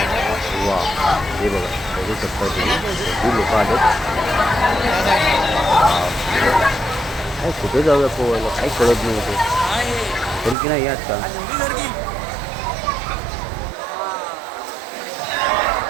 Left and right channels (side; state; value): left; drops out; at 10.6 s